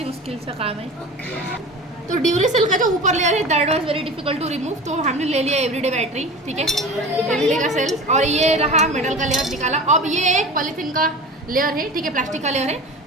मुश्किल सा काम है, तो ड्यूरेसेल का जो ऊपर लेयर है that was very difficult to remove, तो हमने ले लिया एवरीडे बैटरी, ठीक है, एवरीडे का सेल, और ये रहा मेटल का लेयर निकाला। अब ये एक पॉलीथीन का लेयर है, ठीक है, प्लास्टिक का लेयर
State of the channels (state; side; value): normal; both; correlation 0.35